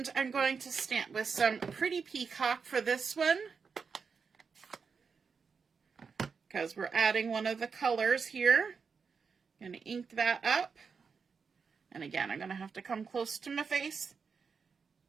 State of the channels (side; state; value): left; quieter; 5.6 dB